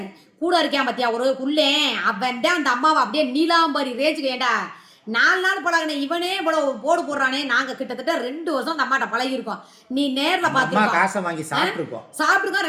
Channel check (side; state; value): both; identical; correlation 1.00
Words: கூட இருக்கான் பத்தியா ஒரு உள்ளே, அவன் தான் அந்த அம்மாவை அப்படியே நீலாம்பரி ரேஞ்சுக்கு. ஏண்டா 4 நாள் பழகின இவனே இவ்வளவு போடு போடுறானே. நாங்க கிட்டத்தட்ட 2 வருஷம் அந்த அம்மாட்ட பழகி இருக்கோம். நீ நேர்ல பாத்துருக்கோம், காசை வாங்கி சாப்பிட்டுருக்கோம்.